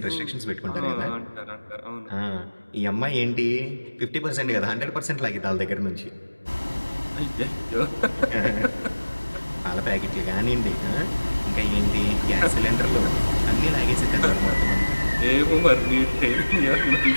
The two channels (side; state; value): both; inverted; correlation -1.00